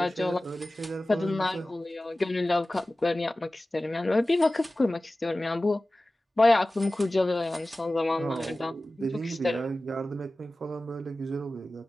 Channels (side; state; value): both; normal; correlation 0.96